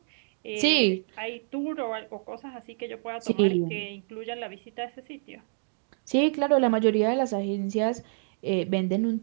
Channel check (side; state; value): left; silent; digital silence